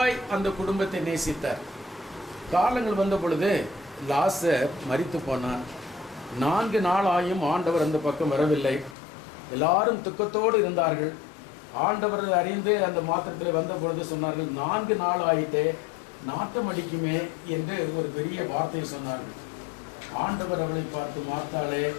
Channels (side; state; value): right; drops out; at 9.0 s